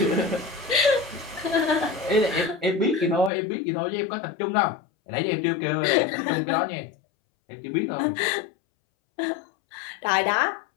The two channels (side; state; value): right; drops out; at 3.3 s